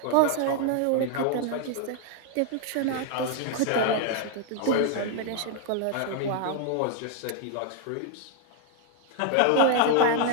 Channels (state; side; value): different; both; correlation 0.00